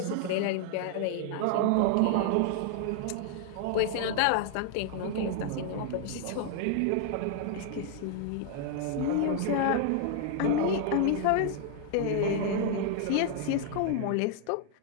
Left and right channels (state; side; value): different; both; correlation 0.00